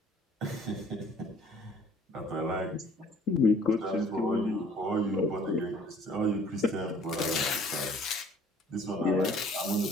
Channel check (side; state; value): both; normal; correlation 0.54